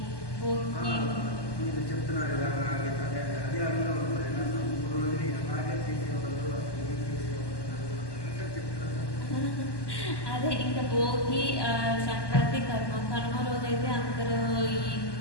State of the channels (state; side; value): late; right; 1.2 ms